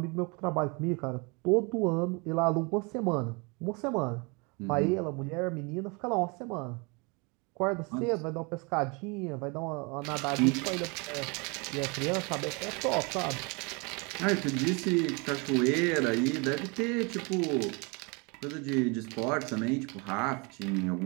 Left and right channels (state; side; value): quieter; left; 30.1 dB